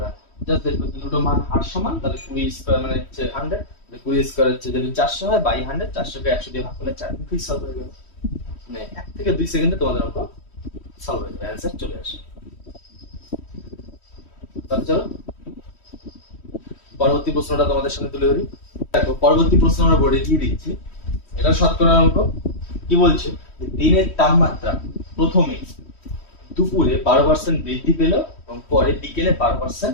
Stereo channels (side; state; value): right; late; 3.1 ms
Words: না, জাস্ট দেখবে দুটো মান হার সমান, তাহলে 20² মানে হচ্ছে 100, 20² হচ্ছে যদি 400 হয়, বাই 100, 400কে 100 দিয়ে ভাগ করলে 4, মুখেই সলভ হয়ে যাবে। মানে 1 থেকে 2 সেকেন্ডে তোমাদের অঙ্ক সলভ হয়ে যাবে, অ্যান্সার চলে আসে। তাহলে চলো পরবর্তী প্রশ্নটা তোমাদের সামনে তুলে ধরি। দেখো পরবর্তী প্রশ্ন আমরা বোর্ডে দিয়ে দিচ্ছি, এটা শতকরার অঙ্ক। কি বলছে? দিনের তাপমাত্রা প্রথমে দুপুরে 12% বৃদ্ধি পেল এবং পরে বিকেলে 12%